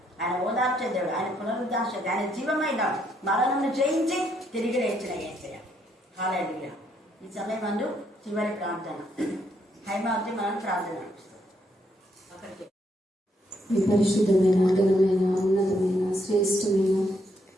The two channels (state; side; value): normal; both; correlation 0.74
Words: ఆయన ఓదార్చే దేవుడు, ఆయన పునరుద్ధరణ శక్తి, ఆయన జీవమైన మరణంను జయించి తిరిగి లేచిన యేసయ్య. హల్లెలూయా. ఈ సమయం మందు చివరి ప్రార్థన హైమావతి మనం ప్రార్థన అక్కడికి. మీ పరిశుద్ధమైన, ఘనమైన, ఉన్నతమైన, శ్రేష్టమైన